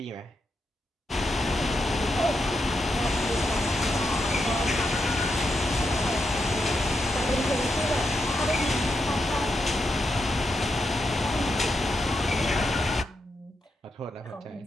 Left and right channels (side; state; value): both; normal; correlation 0.84